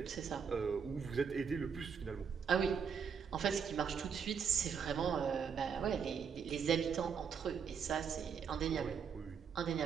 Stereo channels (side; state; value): left; quieter; 6.7 dB